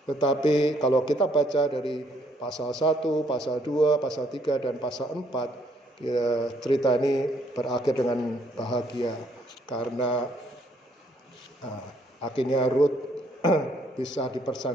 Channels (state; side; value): normal; both; correlation 0.68